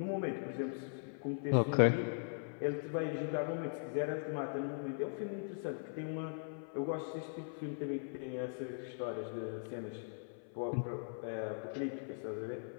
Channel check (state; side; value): silent; right; 51 dB below the other